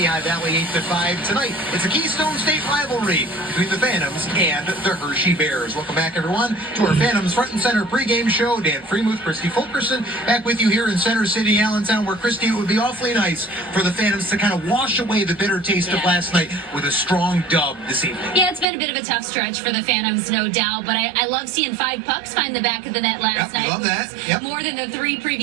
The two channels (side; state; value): left; drops out; at 18.7 s